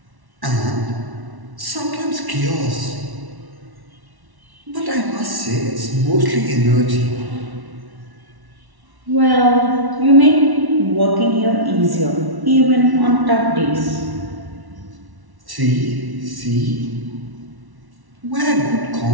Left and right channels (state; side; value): late; left; 1.1 ms